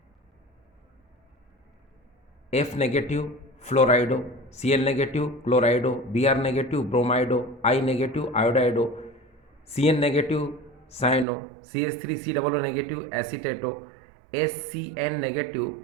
F negative fluorido, Cl negative chlorido, Br negative bromido, I negative iodido, Cn negative cyano, CH3COO negative acetato, SCN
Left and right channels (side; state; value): left; drops out; at 11.2 s